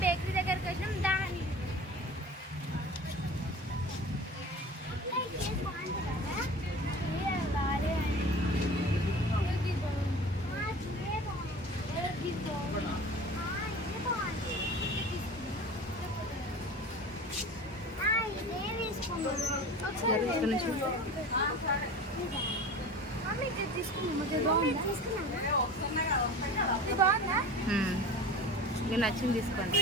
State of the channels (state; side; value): normal; both; correlation 0.37